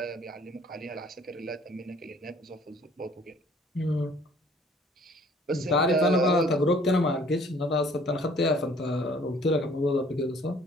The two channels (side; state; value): both; normal; correlation 0.57